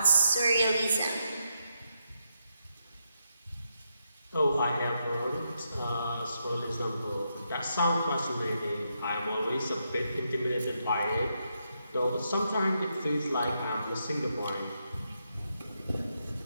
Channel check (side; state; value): both; inverted; correlation -0.82